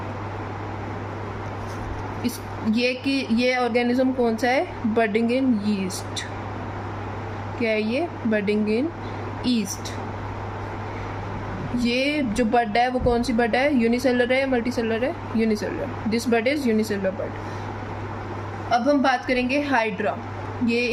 इस ये कि ये ऑर्गेनिज्म कौन सा है, बडिंग इन यीस्ट, क्या है ये, बडिंग इन ईस्ट। ये जो बड है वो कौन सी बड है, यूनिसेलर है या मल्टीसेलर है, unicellular, this bud is unicellular bud. अब हम बात करेंगे हाइड्रा, ये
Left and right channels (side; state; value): both; identical; correlation 1.00